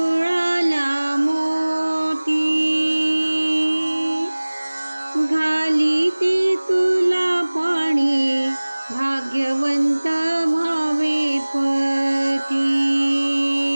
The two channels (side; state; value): both; inverted; correlation -1.00